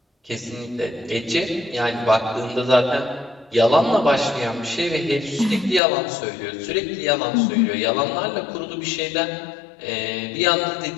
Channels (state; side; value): drops out; right; at 5.8 s